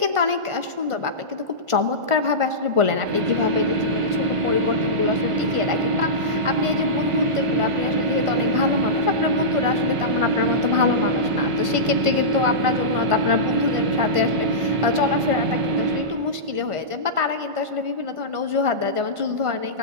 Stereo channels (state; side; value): late; left; 1.5 ms